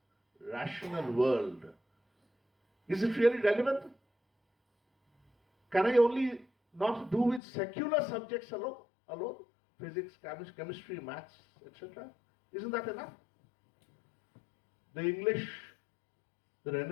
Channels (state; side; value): drops out; right; at 7.4 s